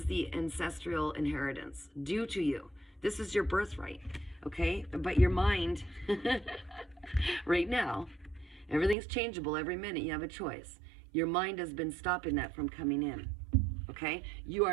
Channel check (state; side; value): drops out; left; at 9.0 s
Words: the ancestral inheritance due to you. This is your birthright. Okay? But your mind, right now, everything's changeable every minute. You have a choice. Your mind has been stopping that from coming in. Okay? You